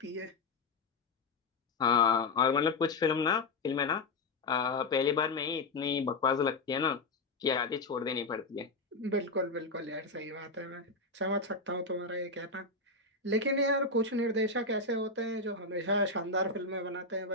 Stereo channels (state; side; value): quieter; right; 3.5 dB